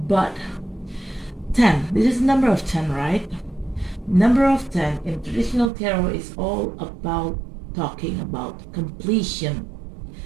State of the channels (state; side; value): drops out; left; at 5.7 s